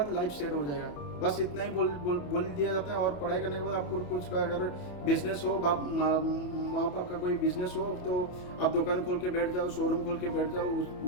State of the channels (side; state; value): right; late; 28 ms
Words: लाइफ सेट हो जाएगा, बस इतना ही बोल दिया जाता है। और पढ़ाई करने के बाद आपको कुछ का अगर बिजनेस हो, माँ बाप का कोई बिजनेस हो, तो आप दुकान खोल के बैठ जाओ, शोरूम खोल के बैठ जाओ,